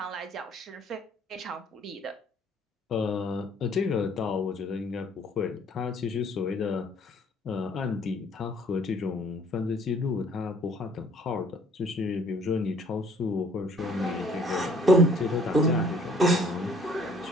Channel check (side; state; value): both; normal; correlation 0.58